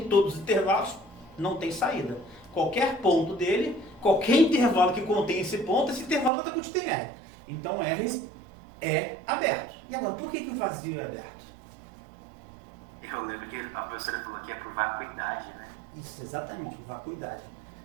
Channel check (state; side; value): drops out; left; at 6.3 s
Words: todos os intervalos, não tem saída. qualquer ponto dele, qualquer intervalo que contém esse ponto, esse intervalo vai estar contido em R. Então R é aberto. E agora, por que o vazio é aberto? Eu lembro que a professora falou que é por vacuidade, né? Isso, exatamente, por vacuidade.